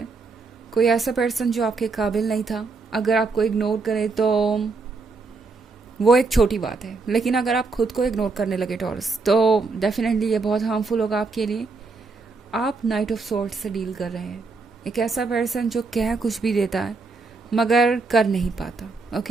कोई ऐसा पर्सन जो आपके काबिल नहीं था, अगर आपको इग्नोर करे तो वो एक छोटी बात है, लेकिन अगर आप खुद को इग्नोर करने लगे टॉरस तो डेफिनेटली ये बहुत हार्मफुल होगा आपके लिए। आप नाइट ऑफ सॉर्ड्स से डील कर रहे हैं। एक ऐसा पर्सन जो कह कुछ भी देता है मगर कर नहीं पाता।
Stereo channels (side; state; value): left; quieter; 4.1 dB